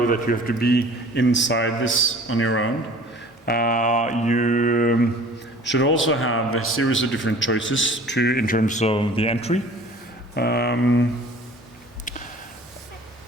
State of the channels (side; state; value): both; normal; correlation 0.47